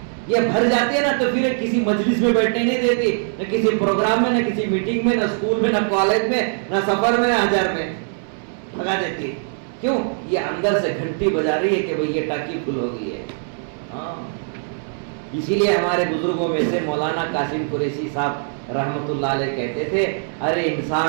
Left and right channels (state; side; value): silent; left; 64 dB below the other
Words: یہ بھر جاتی ہے نا تو پھر کسی مجلس میں بیٹھنے نہیں دیتی، نہ کسی پروگرام میں، نہ کسی میٹنگ میں، نہ اسکول میں، نہ کالج میں، نہ سفر میں، نہ ہزار میں لگا دیتی ہے۔ کیوں؟ یہ اندر سے گھنٹی بجا رہی ہے کہ بھئی یہ ٹاکی فل ہو گئی ہے۔ ہاں، اسی لیے ہمارے بزرگوں میں سے مولانا قاسم قریشی صاحب رحمت اللہ علیہ کہتے تھے، ارے